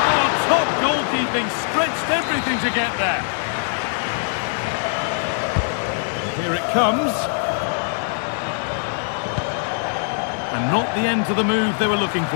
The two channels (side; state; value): right; silent; digital silence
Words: Oh, top goalkeeping, stretched everything to get there. Here it comes. And not the end to the move they were looking